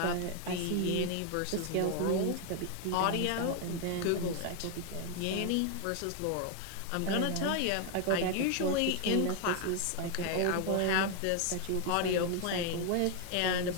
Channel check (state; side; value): different; both; correlation 0.00